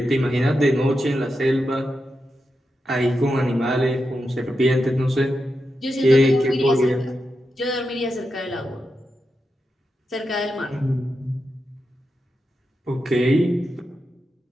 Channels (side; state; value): both; normal; correlation 0.88